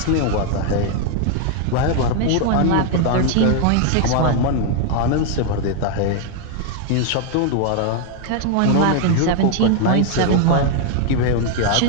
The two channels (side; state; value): both; different; correlation 0.00